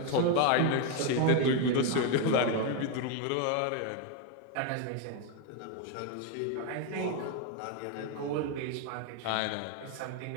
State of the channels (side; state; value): both; different; correlation 0.01